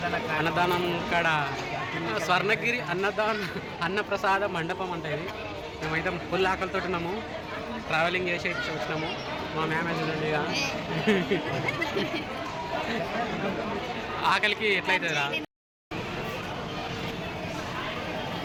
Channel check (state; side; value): identical; both; correlation 1.00